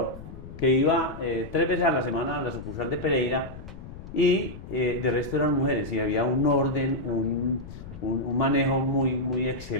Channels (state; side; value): noise; left; rumble, 13 dB below the sound